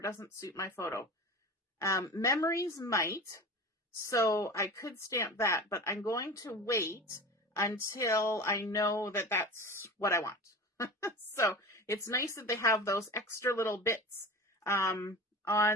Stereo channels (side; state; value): both; normal; correlation 0.33